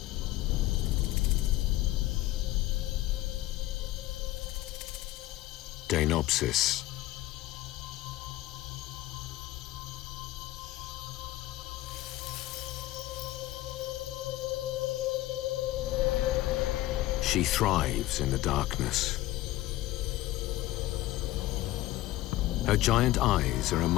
Deinopsis. She thrives in the darkness. Her giant eyes are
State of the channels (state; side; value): quieter; right; 16.3 dB